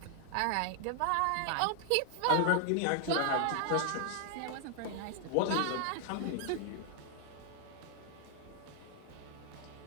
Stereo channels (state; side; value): different; both; correlation 0.00